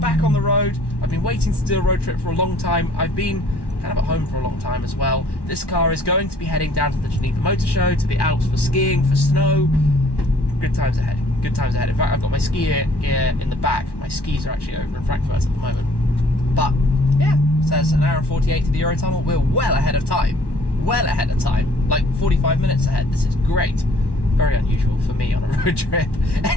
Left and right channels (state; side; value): late; right; 1.1 ms